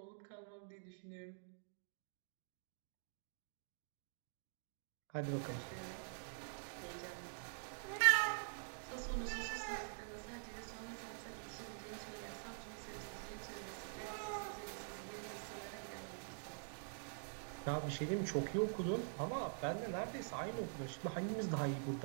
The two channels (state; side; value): silent; left; digital silence